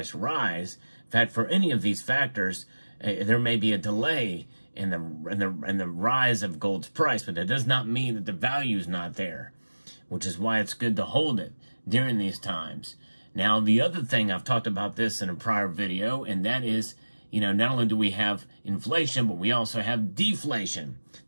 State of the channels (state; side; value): inverted; both; correlation -1.00